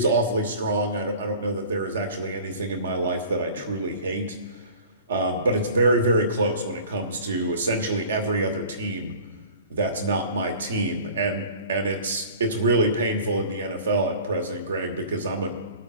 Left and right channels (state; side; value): inverted; both; correlation -0.44